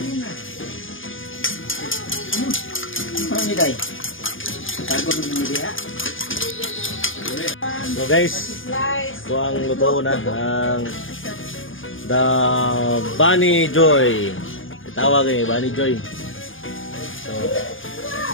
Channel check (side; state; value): right; late; 0.58 ms